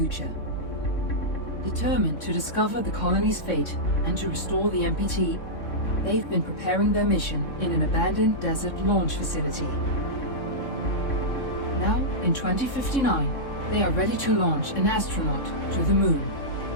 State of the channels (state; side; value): late; right; 3.6 ms